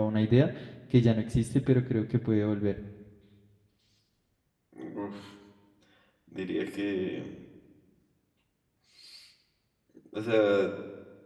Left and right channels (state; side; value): identical; both; correlation 1.00